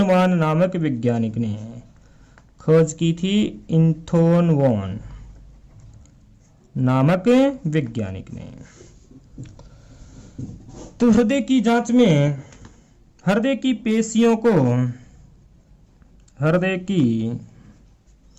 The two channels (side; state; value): both; identical; correlation 1.00